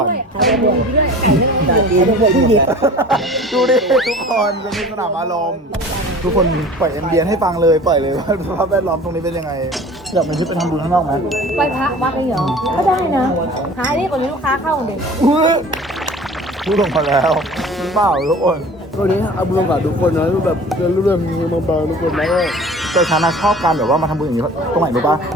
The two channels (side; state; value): both; normal; correlation 0.43